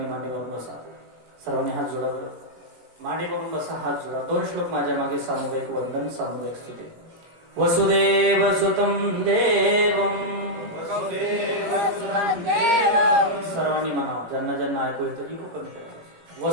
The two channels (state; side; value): late; left; 18 ms